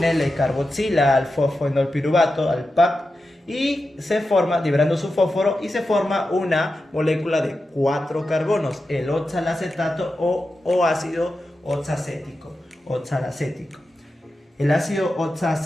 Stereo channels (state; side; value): normal; both; correlation 0.91